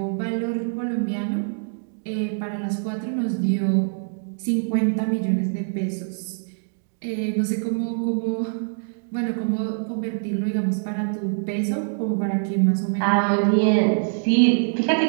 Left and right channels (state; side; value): silent; left; digital silence